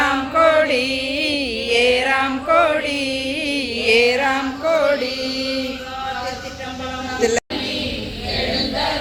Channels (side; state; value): both; identical; correlation 1.00